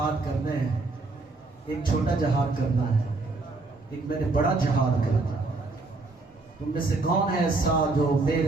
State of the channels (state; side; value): quieter; left; 3.4 dB